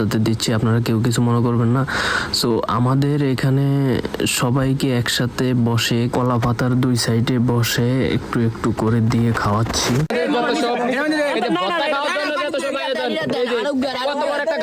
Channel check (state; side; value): identical; both; correlation 1.00